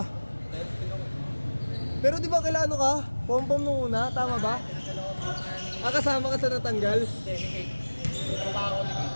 Pero di ba kailan ka? Pom-pom nung una, tama ba? Kasama ka sa natanggal? Hindi, ni Kate. Trabaho ko ni Kate.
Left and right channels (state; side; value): inverted; both; correlation -1.00